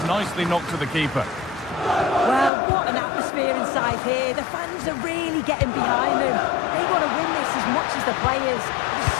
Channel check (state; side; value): drops out; right; at 2.5 s